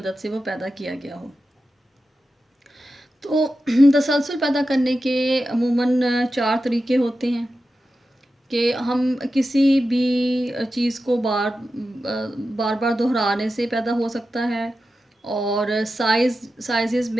سے وہ پیدا کیا گیا ہو. تو تسلسل پیدا کرنے کے عموماً 4 طریقے ہوتے ہیں کہ ہم کسی بھی چیز کو بار بار دہرانے سے پیدا ہو سکتا ہے، اور سائزز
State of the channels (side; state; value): both; normal; correlation 0.92